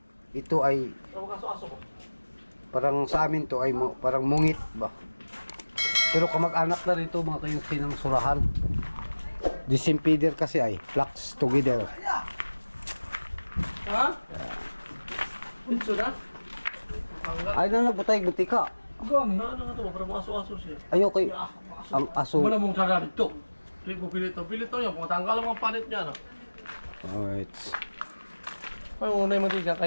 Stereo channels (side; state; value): both; inverted; correlation -1.00